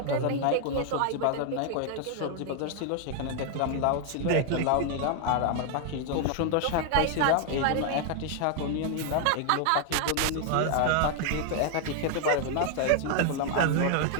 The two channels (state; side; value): different; both; correlation 0.00